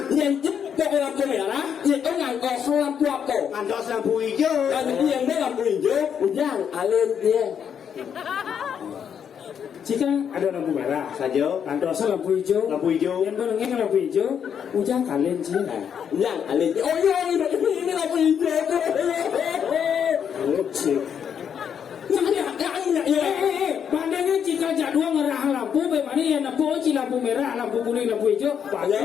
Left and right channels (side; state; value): right; quieter; 8.0 dB